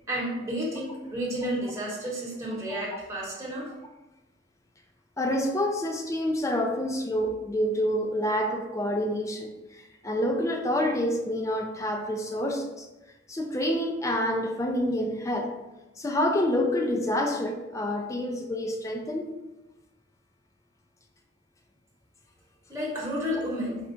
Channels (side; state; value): both; normal; correlation 0.53